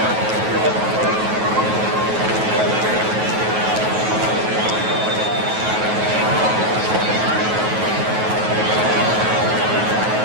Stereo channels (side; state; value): left; late; 9.3 ms